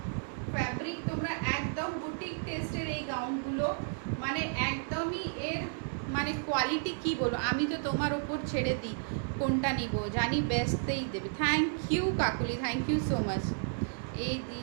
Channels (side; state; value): left; silent; digital silence